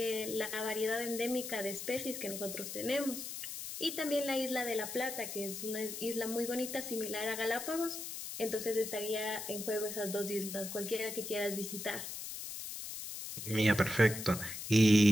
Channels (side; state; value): left; noise; hiss, 7 dB below the sound